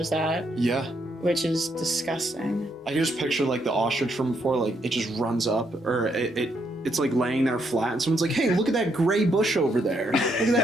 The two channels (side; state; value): both; normal; correlation 0.76